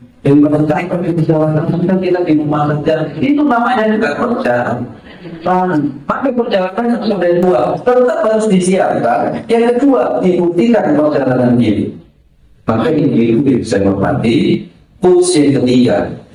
yang perjalanan kita di rumah saja, itu namanya juga perjalanan. Maka perjalanan sudah dua, tetap harus disiapkan. Yang kedua, dibuktikan perjalanan ini. Maka ini bisa menghormati. Putus yang ketiga,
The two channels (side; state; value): both; identical; correlation 1.00